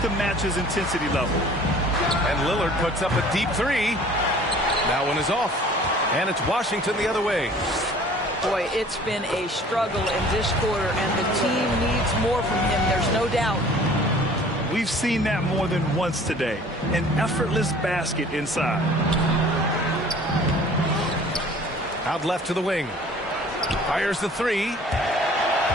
to match his intensity level. And Lillard puts up a deep 3. That one is off. And it's Washington the other way. Boy, it's been a struggle in this quarter, and the team needs more from him. There's no doubt. We've seen that more than once today. An effortless basket inside. Out left to the wing. Fires the 3.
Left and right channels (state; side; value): normal; both; correlation 0.50